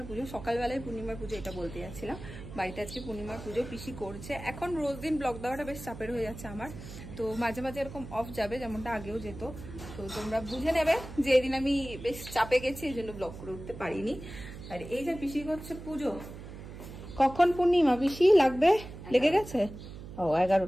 পুজো। সকালবেলায় পূর্ণিমার পুজো এটা বলতে যাচ্ছিলাম। বাড়িতে আজকে পূর্ণিমার পুজো পিসি করছে। এখন রোজ দিন ব্লগ দেওয়াটা বেশ চাপের হয়ে যাচ্ছে আমার, তো মাঝে মাঝে এরকম অফ যাবে, যেমনটা আগেও যেত। তো তোমরা বুঝে নেবে যে এদিন আমি বেশ চাপে গেছি, এই জন্য ব্লগ করে উঠতে পারিনি। আর এই যে পিসি করছে পুজো। কখন পূর্ণিমা পিসি লাগবে? লেগে গেছে? ও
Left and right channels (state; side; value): noise; right; hum, 12 dB below the sound